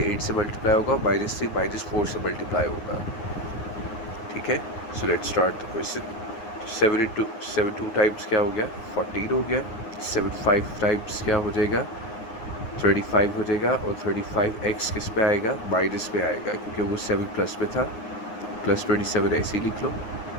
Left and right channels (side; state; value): right; late; 9.6 ms